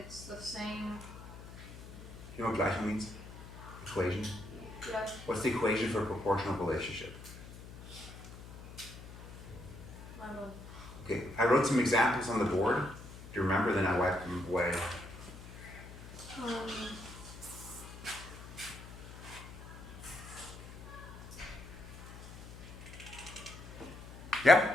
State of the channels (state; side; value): noise; left; hum, 14 dB below the sound